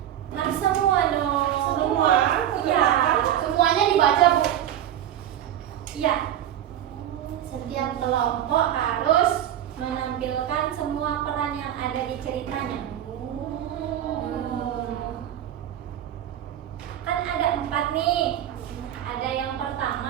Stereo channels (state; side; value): quieter; left; 11.0 dB